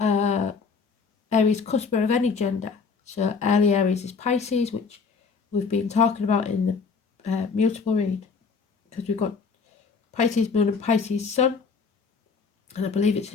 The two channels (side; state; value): right; quieter; 5.1 dB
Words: Aries cusper of any gender. So early Aries is Pisces, which we've been talking about in the mutable read, because we've got Pisces moon and Pisces sun, and I believe it's